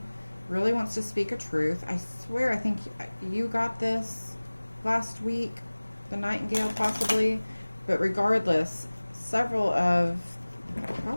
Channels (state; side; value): inverted; both; correlation -1.00